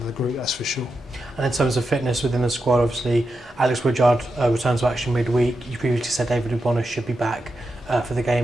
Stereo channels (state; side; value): normal; both; correlation 0.87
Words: the group, that's for sure. And in terms of fitness within the squad, obviously Alex Woodyard returns to action midweek. You previously said David Ubona should be back for the